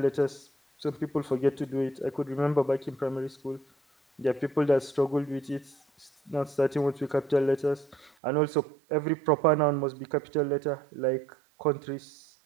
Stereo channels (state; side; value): drops out; left; at 8.1 s